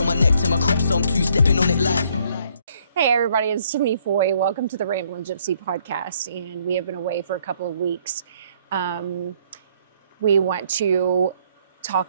my neck to my crep, so I'm two-stepping on it like. Hey everybody, it's Tiffany Foy. Welcome to the Ramblin' Gypsy podcast, and we have been away for a couple of weeks. We want to talk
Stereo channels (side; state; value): both; inverted; correlation -0.66